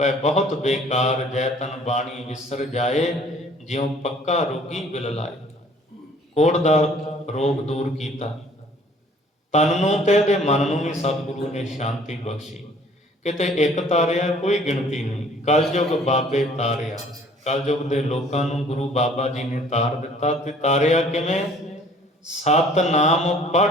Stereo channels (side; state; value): both; normal; correlation 0.55